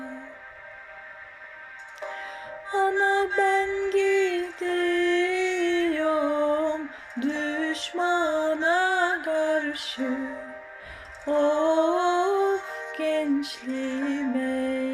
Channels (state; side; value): identical; both; correlation 1.00